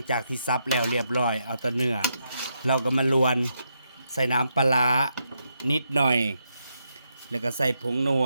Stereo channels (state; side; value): inverted; both; correlation -0.81